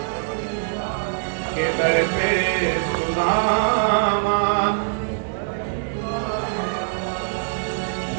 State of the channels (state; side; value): silent; left; digital silence